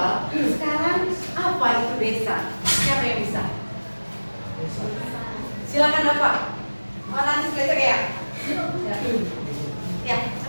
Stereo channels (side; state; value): both; inverted; correlation -1.00